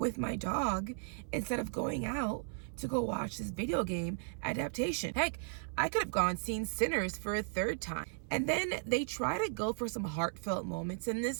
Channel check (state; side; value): silent; left; 54 dB below the other